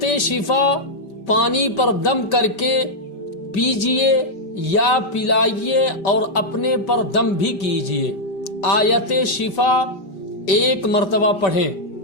شفا پانی پر دم کر کے پیجئے یا پلائیے اور اپنے پر دم بھی کیجئے۔ آیت شفا ایک مرتبہ پڑھیں،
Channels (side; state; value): right; late; 5.1 ms